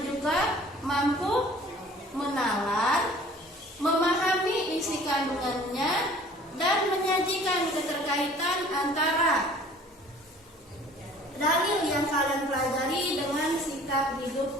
juga mampu menalar, memahami isi kandungannya, dan menyajikan keterkaitan antara dalil yang kalian pelajari dengan sikap hidup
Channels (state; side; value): normal; both; correlation 0.50